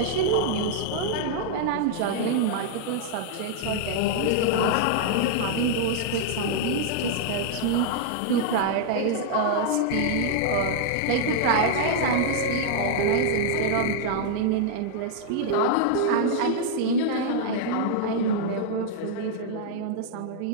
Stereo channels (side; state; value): both; different; correlation -0.01